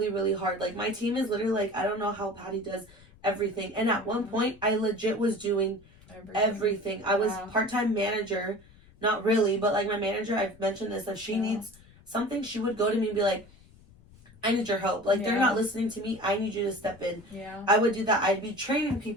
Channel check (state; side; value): noise; left; rumble, 25 dB below the sound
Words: really hard. Like, my team is literally like, I don't know how Patty does everything. And at one point I legit was doing everything. I was part-time manager, not really, but like my manager, I've mentioned this, that she needs something, she would go to me and be like, I need your help. Like, they're not listening to me. I need you to step in. I would do that. I'd be training